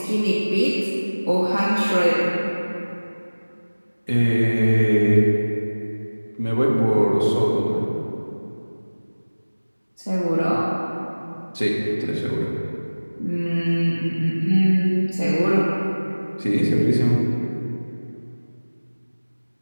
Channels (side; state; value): both; inverted; correlation -1.00